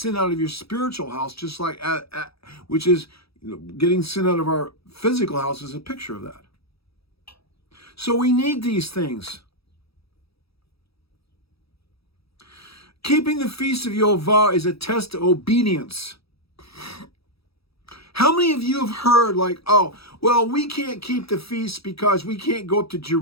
out of your spiritual house, just like, which is, getting sin out of our physical house is a picture of that. So we need these things. Keeping the feast of Yehovah is a test of obedience. How many of you have heard we can't keep the feasts because we can't go up to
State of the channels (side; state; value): right; late; 0.77 ms